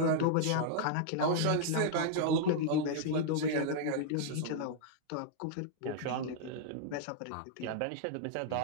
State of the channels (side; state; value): both; different; correlation -0.01